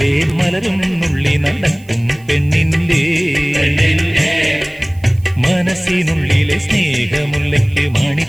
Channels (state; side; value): noise; right; hiss, 28 dB below the sound